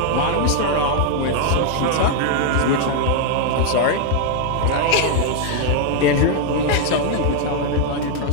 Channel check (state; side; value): different; both; correlation 0.00